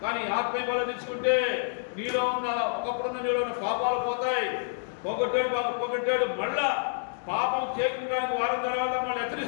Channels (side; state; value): right; silent; digital silence